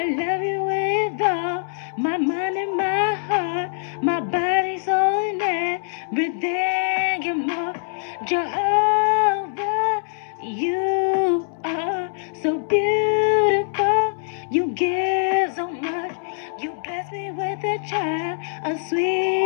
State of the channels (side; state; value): right; silent; 63 dB below the other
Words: love you with all my mind and my heart, my body, soul, and everything. You're more Jehovah. You are so beautiful. You give so much. You bless me with a child, a